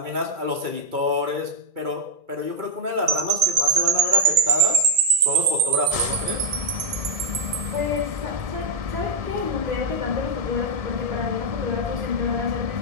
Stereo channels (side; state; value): left; late; 2.4 ms